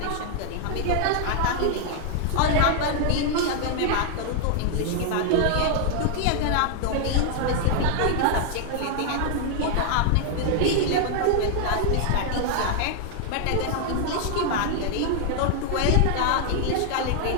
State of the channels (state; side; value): different; both; correlation 0.00